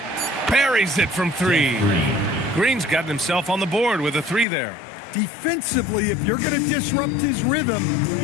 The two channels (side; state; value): right; drops out; at 4.5 s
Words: Buries it from 3. Green's gotten himself on the board with a 3 there. Defensively, if you're going to disrupt his rhythm,